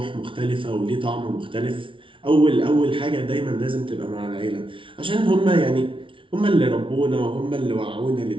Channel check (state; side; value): late; left; 0.25 ms